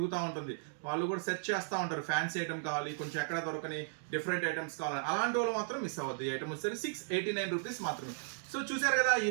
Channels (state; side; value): silent; left; digital silence